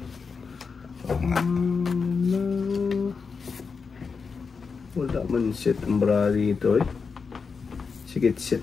Wala man set ang brady ito eh. Sige, set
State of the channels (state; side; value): quieter; right; 5.2 dB